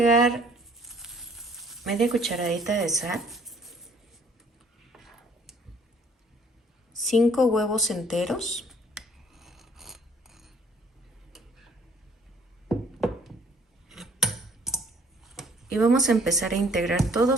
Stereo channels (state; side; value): normal; both; correlation 0.58